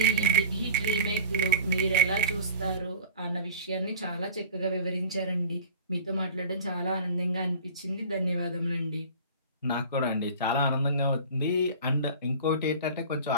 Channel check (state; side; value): inverted; both; correlation -0.39